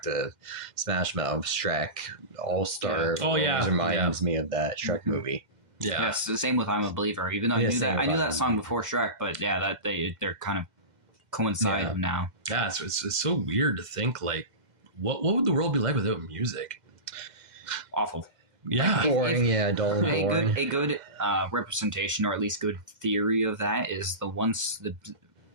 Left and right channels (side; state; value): left; late; 2.1 ms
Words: to Smash Mouth, Shrek, All-Star always reminds me of that Shrek movie. Yeah, it's the same with "I'm a Believer." Even though I knew that song before Shrek, but they're kind of coincide now. Yeah, it's so weird to think like, what would the world be like without music? Awful. Yeah, boring. Dull and boring. A good representation, or at least good theory of that, is the